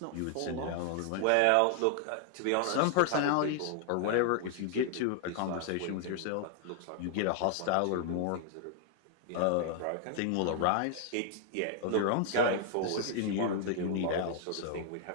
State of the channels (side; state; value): both; different; correlation 0.00